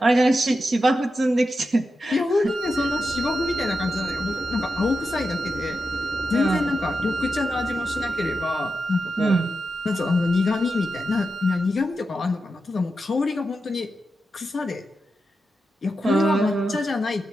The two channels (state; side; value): normal; both; correlation 0.89